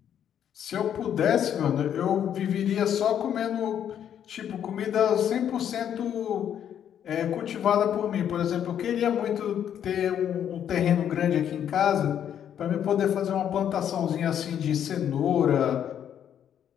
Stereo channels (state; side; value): quieter; right; 9.5 dB